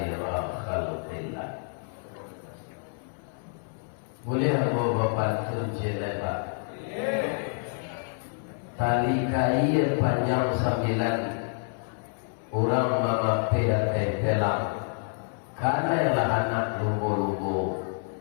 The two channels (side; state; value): right; silent; 57 dB below the other